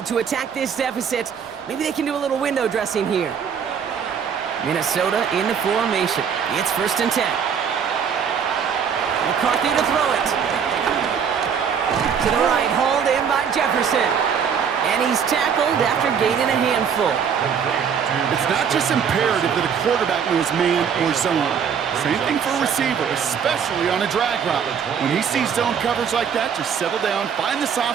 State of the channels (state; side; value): quieter; left; 7.3 dB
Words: to attack this deficit. Maybe they can do a little window dressing here. Minnesota in the formation. It's 1st and 10. McCarthy to throw it. To the right, hauled in by Jefferson. And he's tackled after gaining a handful. It's not just imperative that a quarterback knows man or zone. Same thing for a receiver, especially on a drag route. When he sees zone coverage like that, just settle down, find the